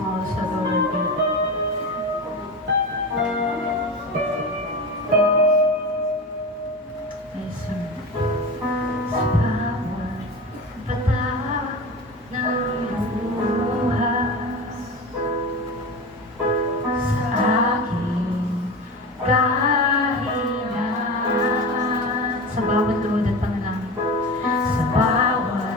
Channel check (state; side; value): normal; both; correlation 0.27